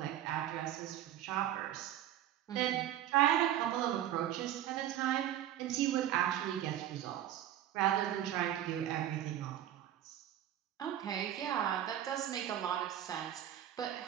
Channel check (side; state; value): left; quieter; 11.8 dB